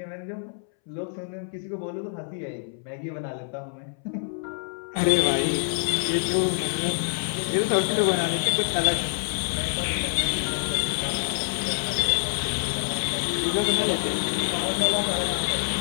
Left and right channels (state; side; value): silent; right; 61 dB below the other